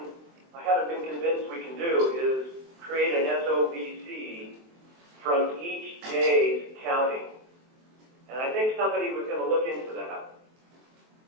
haven't been convinced we can do is create an SOVC from each day's counting. And I think somebody was going to look into that.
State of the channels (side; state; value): left; late; 23 ms